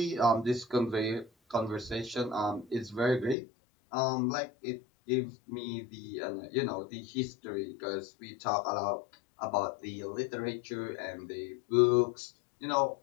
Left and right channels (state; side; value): drops out; right; at 3.4 s